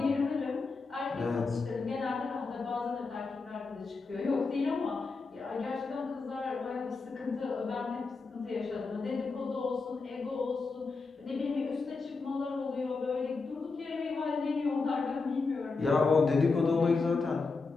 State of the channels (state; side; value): quieter; right; 4.2 dB